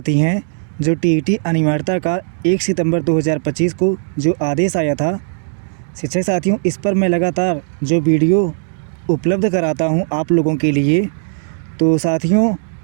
हैं जो टीईटी अनिवार्यता का 1 सितंबर 2025 को जो आदेश आया था। शिक्षक साथियों इस पर मैं लगातार जो वीडियो उपलब्ध कराता हूं आप लोगों के लिए। तो साथियों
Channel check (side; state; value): left; silent; digital silence